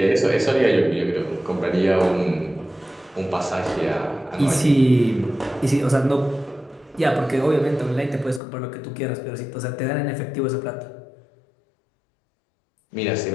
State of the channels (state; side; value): drops out; right; at 8.4 s